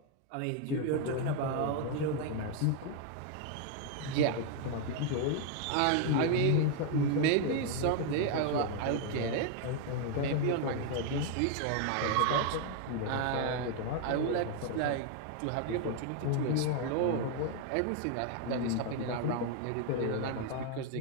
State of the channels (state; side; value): different; both; correlation 0.01